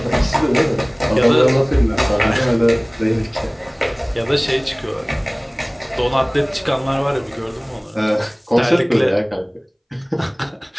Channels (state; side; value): identical; both; correlation 1.00